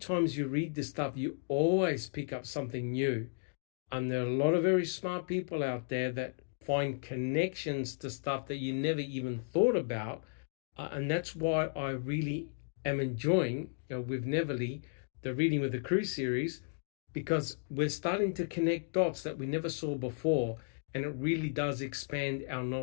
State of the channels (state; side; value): silent; right; digital silence